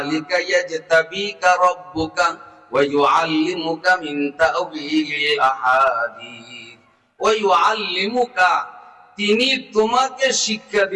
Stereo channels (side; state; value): both; identical; correlation 1.00